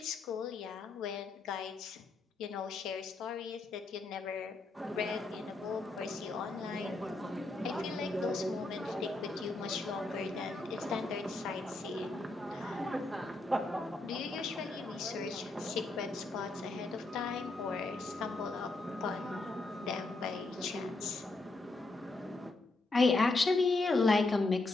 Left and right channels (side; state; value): right; quieter; 3.2 dB